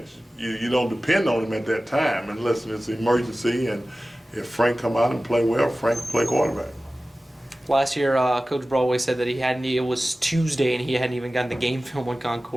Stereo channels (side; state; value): both; normal; correlation 0.96